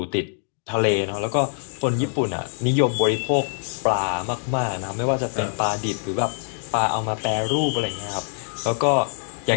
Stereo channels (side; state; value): right; silent; digital silence